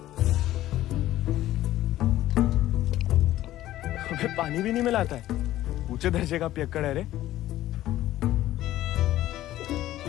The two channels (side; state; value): right; quieter; 14.3 dB